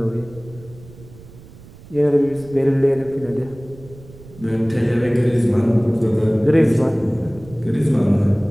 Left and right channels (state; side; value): noise; right; rumble, 20 dB below the sound